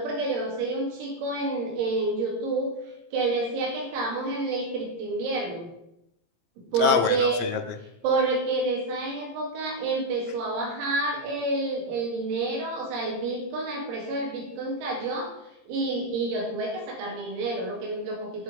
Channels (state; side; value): late; left; 17 ms